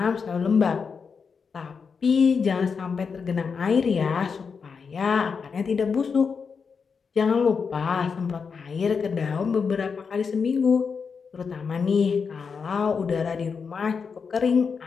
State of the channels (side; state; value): right; quieter; 5.7 dB